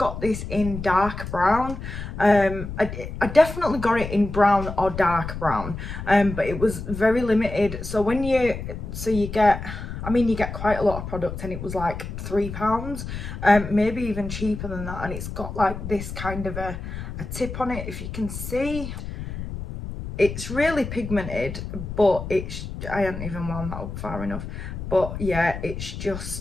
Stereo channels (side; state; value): left; noise; rumble, 8 dB below the sound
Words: this in dark brown. I definitely got it in brown or dark brown, but it was very limited. So when you get, I mean, you get quite a lot of product, and it was like £3, maybe even cheaper than that. And it's got like this kind of a tip on it, if you can see. It's really pigmented, but I haven't even wound that up far enough. But yeah,